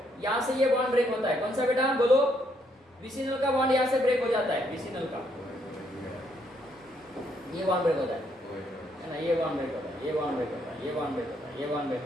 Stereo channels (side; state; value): both; normal; correlation 0.72